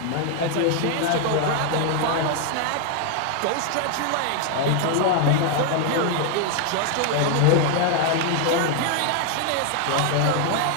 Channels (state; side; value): different; both; correlation 0.00